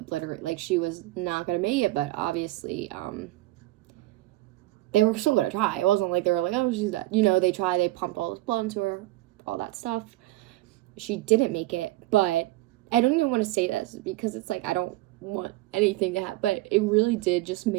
like, she was not gonna make it, but obviously they were still gonna try. It wasn't like they were like, oh, she's dead, you know. They tried, they pumped all this blood into her, all that stuff. She didn't make it, but I don't even want to say this because it's like I don't want anything to happen, but it really did just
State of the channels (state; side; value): quieter; left; 17.9 dB